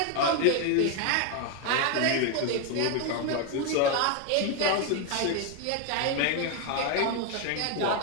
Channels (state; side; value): different; both; correlation 0.01